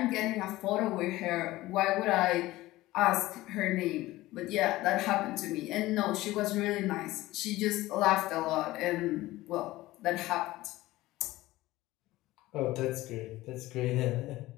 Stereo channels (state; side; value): quieter; right; 17.6 dB